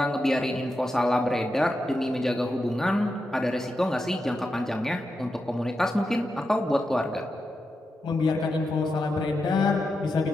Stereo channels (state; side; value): normal; both; correlation 0.87